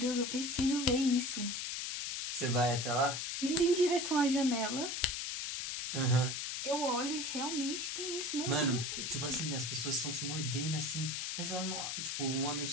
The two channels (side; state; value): left; noise; hiss, 3 dB below the sound